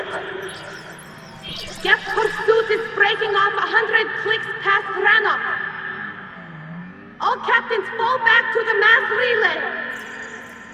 Geth pursuit is breaking off 100 clicks past Rannoch. All captains fall back to the mass relay.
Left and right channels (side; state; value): both; identical; correlation 1.00